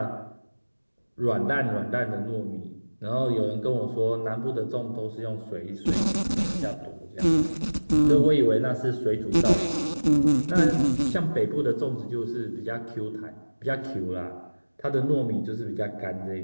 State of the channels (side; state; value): both; inverted; correlation -1.00